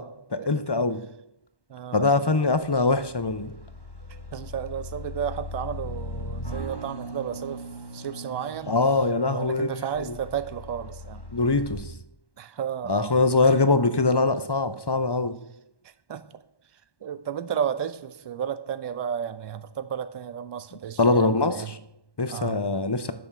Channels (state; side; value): late; right; 1.1 ms